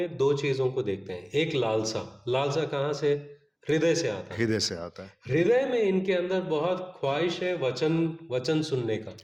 दो चीजों को देखते हैं। एक लालसा कहाँ से? हृदय से आता है। हृदय में इनके अंदर बहुत ख्वाहिश है वचन सुनने का,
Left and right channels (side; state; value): both; identical; correlation 1.00